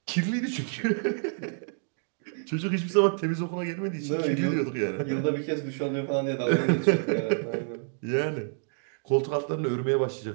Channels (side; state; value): left; silent; digital silence